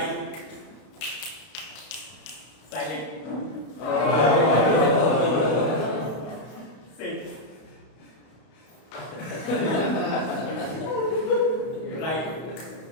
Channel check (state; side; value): late; right; 32 ms